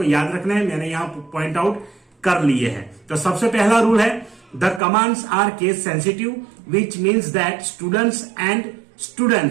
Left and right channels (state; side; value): drops out; left; at 4.8 s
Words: याद रखना है। मैंने यहाँ पॉइंट आउट कर लिए हैं। तो सबसे पहला रूल है the commands are case sensitive, which means that students and